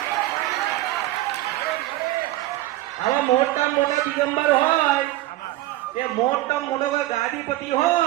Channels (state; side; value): quieter; left; 16.3 dB